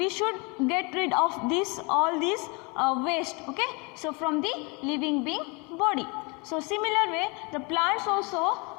should get rid of all these waste. Okay, so from the living being body. So similar way the plants also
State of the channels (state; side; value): quieter; right; 29.8 dB